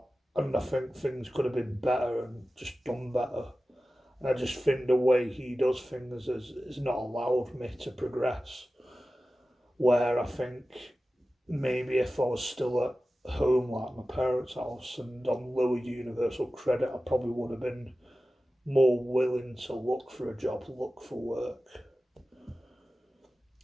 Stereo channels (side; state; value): both; normal; correlation 0.95